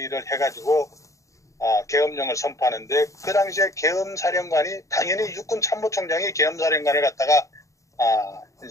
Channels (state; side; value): late; right; 0.15 ms